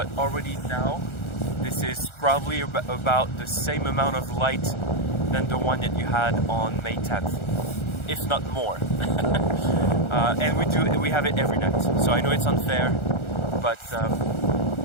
already now, this is probably about the same amount of light than the one that you had on May 10th, if not more. And we have it every night. So I know it's unfair, but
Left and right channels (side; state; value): right; late; 1.4 ms